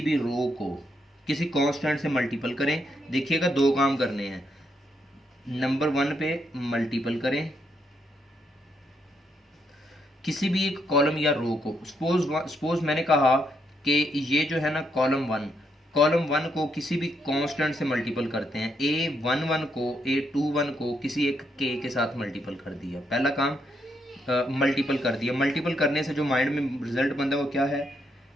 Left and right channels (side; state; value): both; normal; correlation 0.77